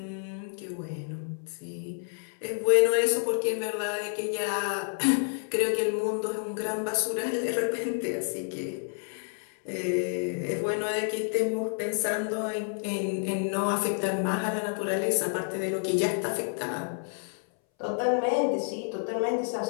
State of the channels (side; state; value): right; silent; 58 dB below the other